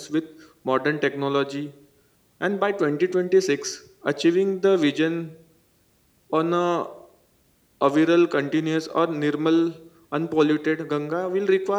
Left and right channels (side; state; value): both; identical; correlation 1.00